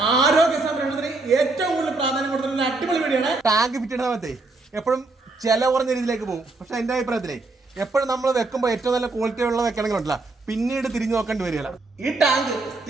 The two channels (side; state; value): left; quieter; 3.3 dB